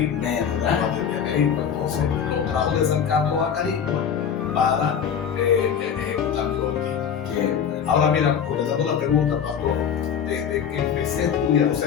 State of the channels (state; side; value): quieter; right; 7.8 dB